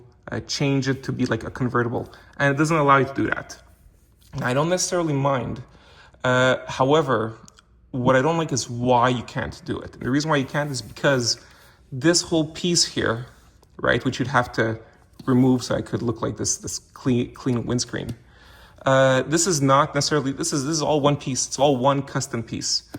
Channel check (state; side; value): identical; both; correlation 1.00